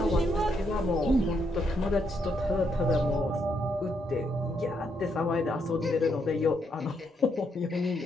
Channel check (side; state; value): both; normal; correlation 0.77